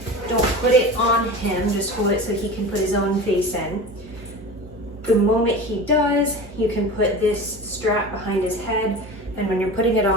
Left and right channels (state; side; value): normal; both; correlation 0.32